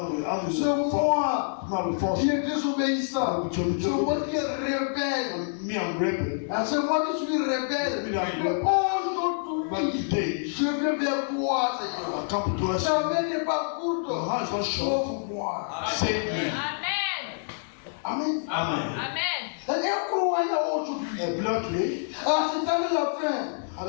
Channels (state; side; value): silent; right; digital silence